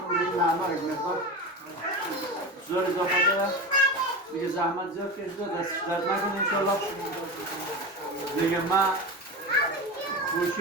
دیگه نعمه یک مقدار زور اضافه داره. دیگه زحمت زیاد کشیده، دستش درد نکنه انشالله. دیگه ما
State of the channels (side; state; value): both; normal; correlation 0.25